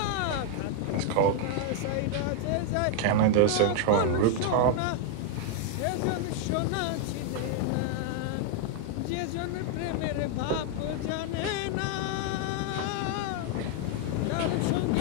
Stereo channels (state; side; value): different; both; correlation 0.00